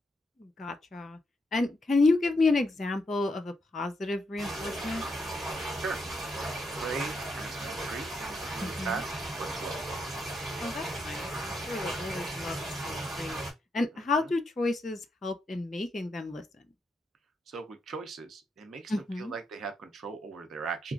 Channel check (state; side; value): normal; both; correlation 0.80